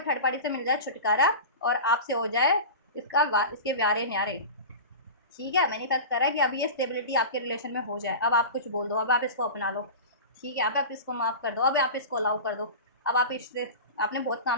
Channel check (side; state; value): both; inverted; correlation -0.31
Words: पार्टी से मिल जाए छुटकारा, और आपसे हो जाए इसके व्यारे न्यारे। ठीक है, मैनिफेस्ट कर रहा है कि अब ये स्टेबिलिटी आपके रिलेशन में हो जाए, अब आप कुछ बोल दो, अब आप इसको अपना लो। ठीक है, अब आप इसको माफ़ कर दो, अब आप इसको अलाउ कर दो। अब आप इससे, आपने बहुत